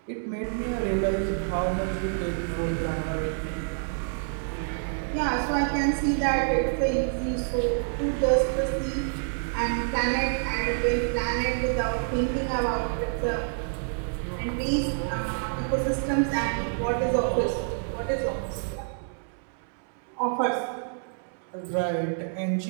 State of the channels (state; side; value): silent; left; 60 dB below the other